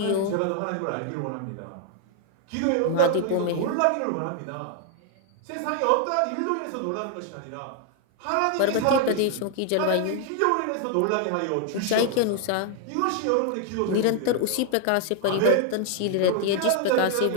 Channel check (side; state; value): both; different; correlation 0.00